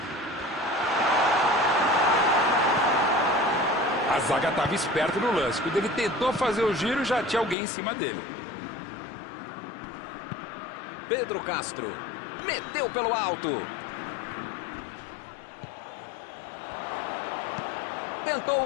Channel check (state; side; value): drops out; right; at 7.6 s